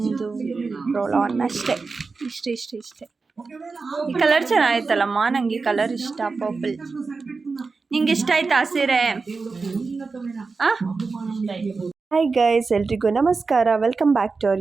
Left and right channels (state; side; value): quieter; left; 4.3 dB